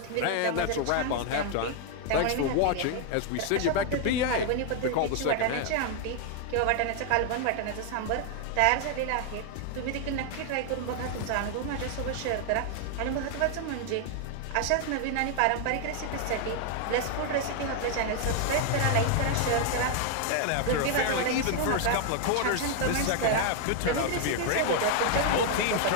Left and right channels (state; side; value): different; both; correlation 0.00